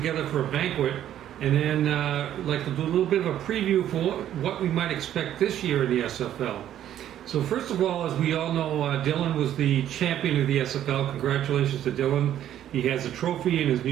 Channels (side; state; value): left; quieter; 11.3 dB